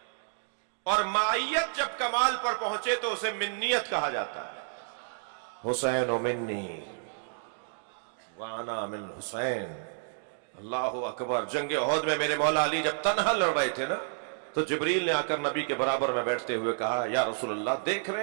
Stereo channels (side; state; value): left; silent; digital silence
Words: اور معیت جب کمال پر پہنچے تو اسے منیت کہا جاتا ہے. حسین منی وانا من حسین. اللہ اکبر. جنگ احد میں میرے مولا علی جب تنہا لڑ رہے تھے نا تو جبریل نے آ کر نبی کے برابر میں بیٹھتے ہوئے کہا یا رسول اللہ دیکھ رہے